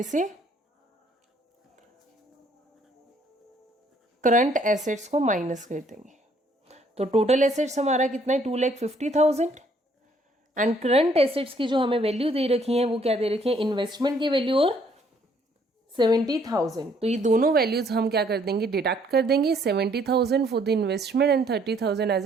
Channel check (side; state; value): both; normal; correlation 0.65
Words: से करंट एसेट्स को माइनस कर देंगे. तो टोटल एसेट्स हमारा कितना है, 2,50,000, एंड करंट एसेट्स की जो हमें वैल्यू दे रखी है वो क्या दे रखी है, इन्वेस्टमेंट की वैल्यू और 70,000. तो ये दोनों वैल्यूज हम क्या कर देंगे, डिडक्ट कर देंगे. 70,000 फॉर द इन्वेस्टमेंट एंड 30,000 एज